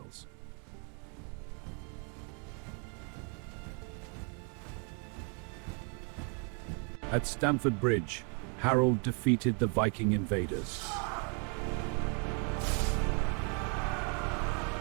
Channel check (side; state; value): left; quieter; 37.9 dB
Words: At Stamford Bridge, Harold defeated the Viking invaders.